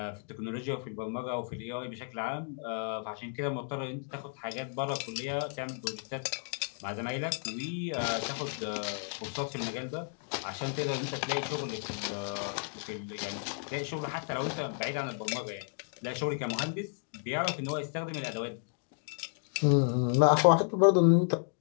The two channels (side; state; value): right; silent; 56 dB below the other